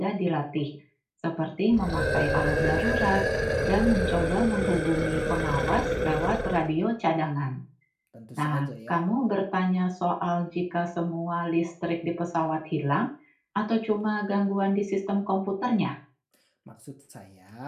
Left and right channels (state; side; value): identical; both; correlation 1.00